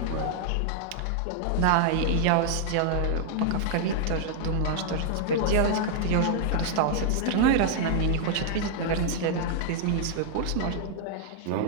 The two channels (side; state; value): both; different; correlation 0.00